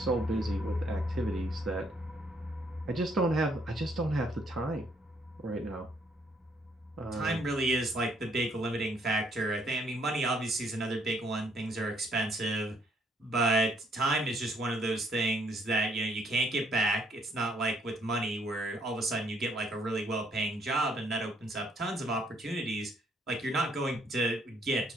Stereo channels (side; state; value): both; normal; correlation 0.68